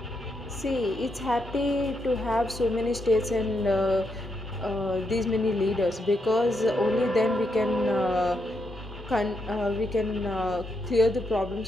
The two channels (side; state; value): both; normal; correlation 0.81